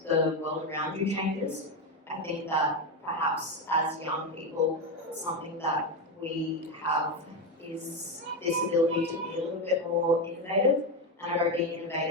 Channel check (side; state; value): both; normal; correlation 0.12